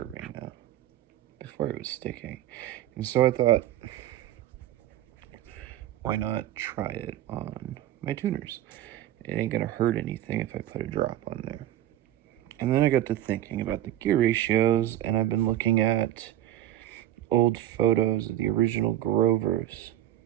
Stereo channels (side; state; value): left; quieter; 13.1 dB